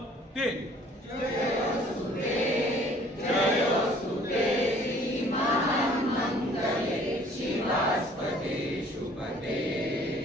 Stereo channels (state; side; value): normal; both; correlation 0.55